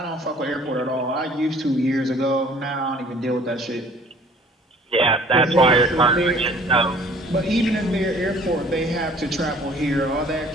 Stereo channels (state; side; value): normal; both; correlation 0.53